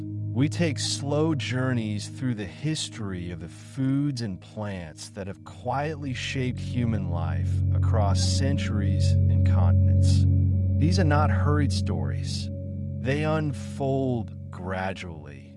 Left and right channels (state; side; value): identical; both; correlation 1.00